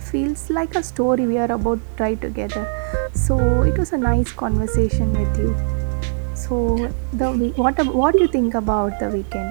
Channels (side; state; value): left; silent; digital silence